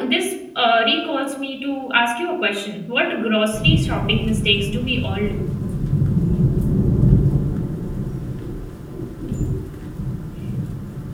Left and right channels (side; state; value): both; identical; correlation 1.00